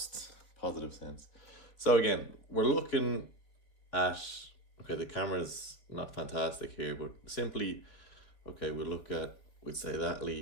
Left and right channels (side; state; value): right; late; 3.3 ms